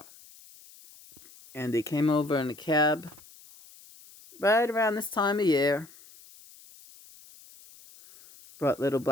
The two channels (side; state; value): left; noise; hiss, 23 dB below the sound